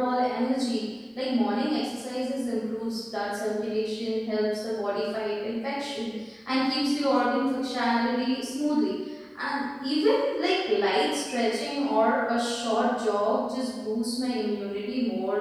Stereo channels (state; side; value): identical; both; correlation 1.00